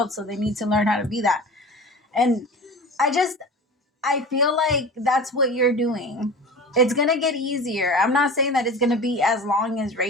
so they need to learn how to be that. And I feel like that's what you're doing. It's going to get easier. I'm not saying that it's going to be as long as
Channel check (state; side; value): normal; both; correlation 0.35